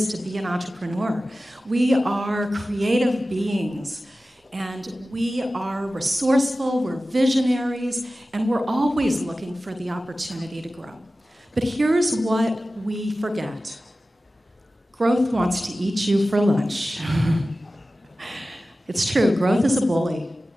to be an entrepreneur. We are creative beings, and we are resourceful, we're visionaries, and we're always looking for the opportunity to grow. But here's what we forget. Growth wants to eat you for lunch. It's true, growth is a bully.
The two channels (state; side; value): normal; both; correlation 0.95